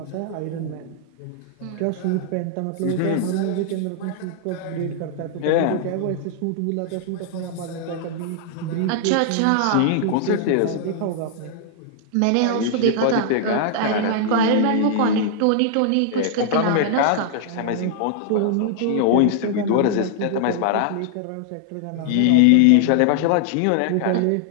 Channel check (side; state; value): both; different; correlation -0.01